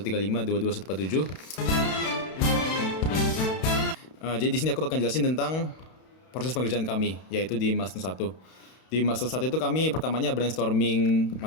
Jadi di sini aku akan jelasin tentang proses pengerjaan kami, yaitu di milestone 1. Di milestone 1 itu kami pertamanya brainstorming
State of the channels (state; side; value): late; right; 32 ms